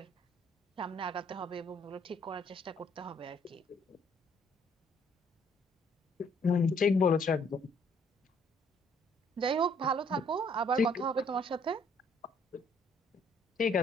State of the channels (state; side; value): normal; both; correlation 0.64